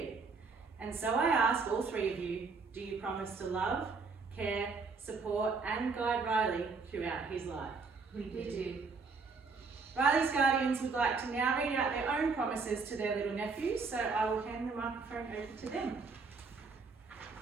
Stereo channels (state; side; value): quieter; left; 4.6 dB